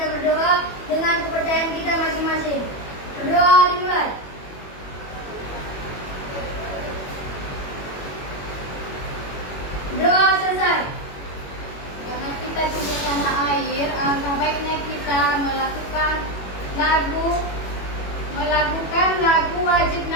berdoa dengan kepercayaan kita masing-masing. Berdoa dimulai. Doa selesai. Karena kita cinta tanah air, alangkah baiknya kita melakukan lagu wajib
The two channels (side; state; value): right; late; 21 ms